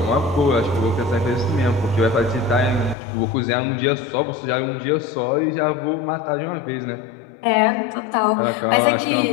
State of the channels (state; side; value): drops out; right; at 3.0 s